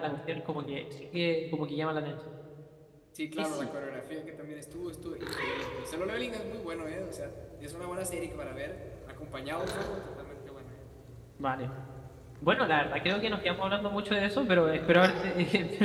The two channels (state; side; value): identical; both; correlation 1.00